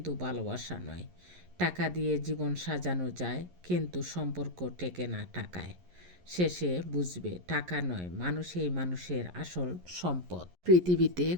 ভালোবাসা নয়। টাকা দিয়ে জীবন সাজানো যায়, কিন্তু সম্পর্ক টেকে না টাকায়। শেষে বুঝবে টাকা নয়, মানুষই মানুষের আসল সম্পদ। পৃথিবীতে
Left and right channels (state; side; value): late; left; 11 ms